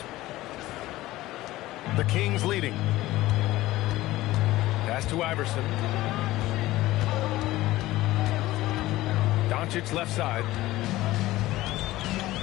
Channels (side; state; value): right; quieter; 17.0 dB